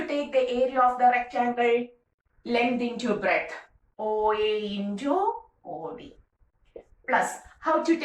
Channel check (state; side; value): identical; both; correlation 1.00